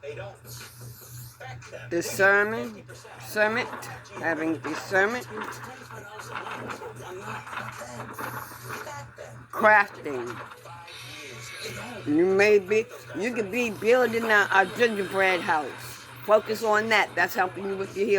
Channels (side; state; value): both; identical; correlation 1.00